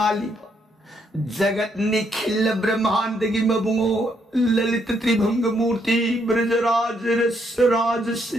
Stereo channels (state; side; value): normal; both; correlation 0.74